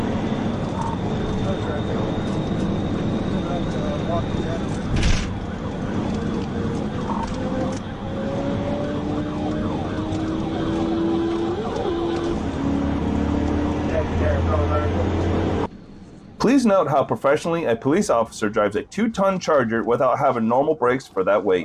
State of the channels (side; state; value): both; identical; correlation 1.00